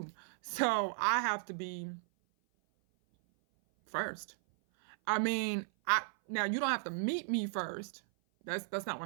So I have to be first. I mean, now you don't have to meet me first. That's not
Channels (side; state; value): left; silent; 54 dB below the other